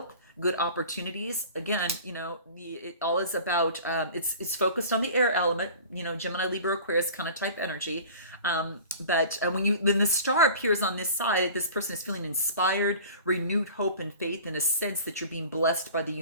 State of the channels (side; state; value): both; inverted; correlation -0.42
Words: good opportunities. Again, you know, it all is about, it's focused on the air element, you know, Gemini, Libra, Aquarius kind of type energy. But when the star appears on this side, this person is feeling inspired, renewed hope and faith, in a sense that you're being blessed by the